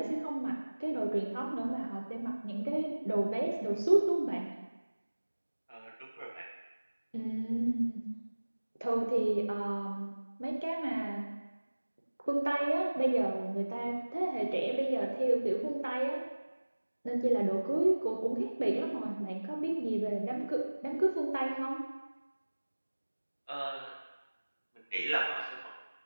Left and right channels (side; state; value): both; inverted; correlation -1.00